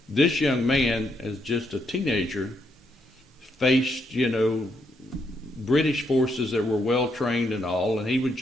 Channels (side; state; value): both; normal; correlation 0.76